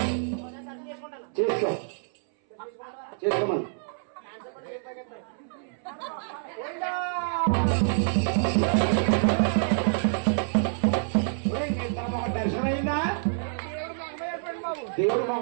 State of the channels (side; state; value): left; silent; 60 dB below the other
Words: చేసుకో చేసుకోమని దర్శనమైందా దేవుడు